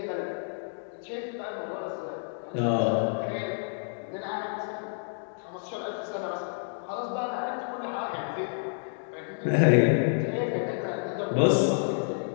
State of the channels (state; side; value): silent; right; digital silence